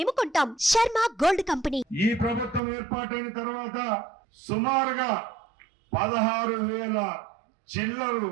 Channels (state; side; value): drops out; left; at 2.6 s